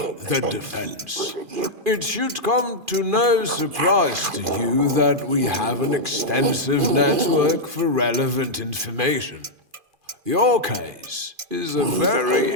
the defense. It should come to no surprise to you that we have an extensive network for relevant information. Your case is a very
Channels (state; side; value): late; left; 2.5 ms